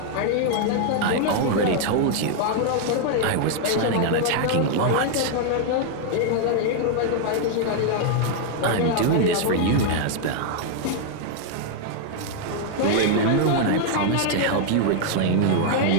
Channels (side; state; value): both; different; correlation 0.00